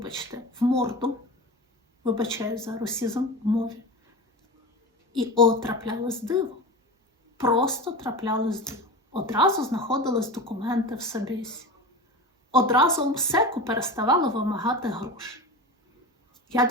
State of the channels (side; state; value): both; normal; correlation 0.29